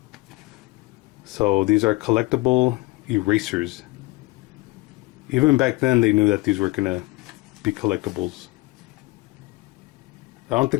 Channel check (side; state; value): right; quieter; 21.8 dB